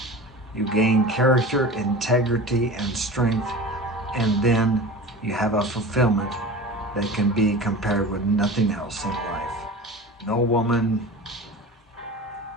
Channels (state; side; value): normal; both; correlation 0.35